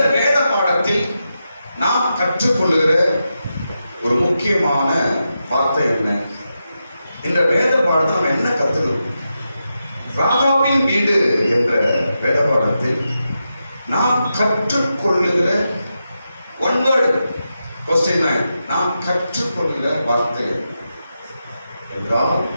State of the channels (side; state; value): both; inverted; correlation -0.88